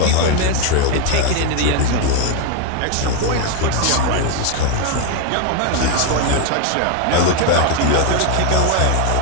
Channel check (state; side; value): different; both; correlation 0.01